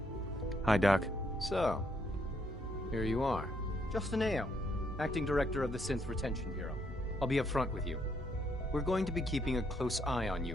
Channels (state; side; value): normal; both; correlation 0.73